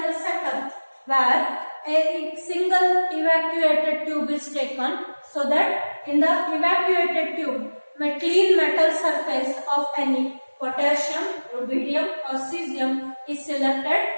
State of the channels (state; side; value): inverted; both; correlation -1.00